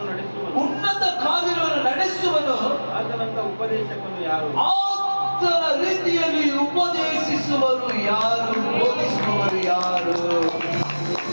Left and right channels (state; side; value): inverted; both; correlation -1.00